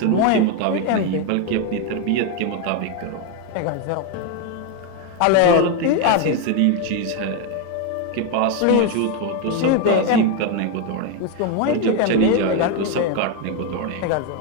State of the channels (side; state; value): both; different; correlation 0.02